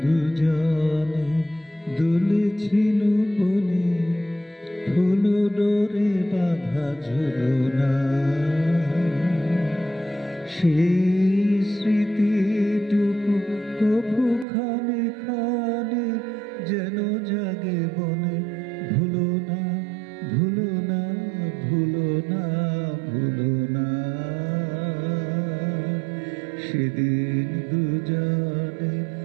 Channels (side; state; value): left; drops out; at 14.5 s